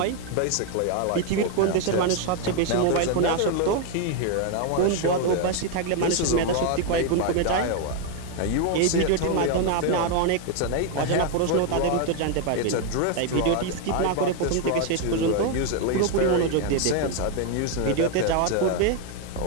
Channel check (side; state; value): both; different; correlation 0.01